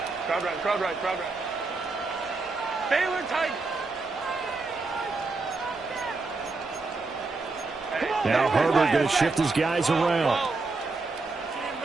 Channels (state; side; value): quieter; left; 3.7 dB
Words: Crowd right. Baylor tight. Now Herbert going to shift his guys around.